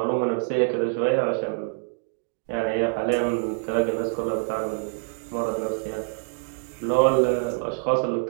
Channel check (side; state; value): left; silent; digital silence